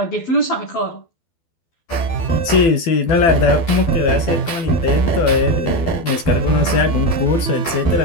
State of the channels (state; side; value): late; right; 12 ms